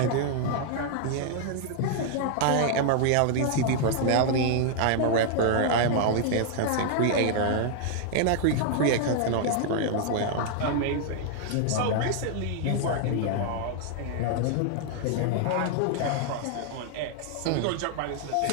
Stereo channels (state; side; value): different; both; correlation -0.01